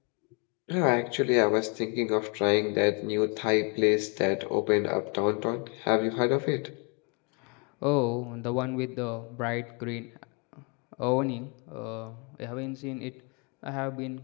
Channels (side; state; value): right; quieter; 34.4 dB